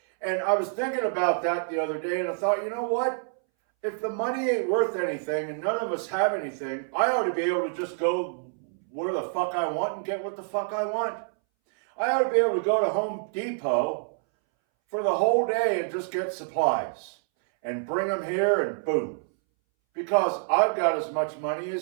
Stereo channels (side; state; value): left; silent; 60 dB below the other